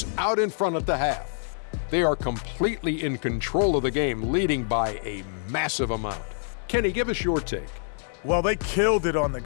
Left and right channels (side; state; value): right; silent; 61 dB below the other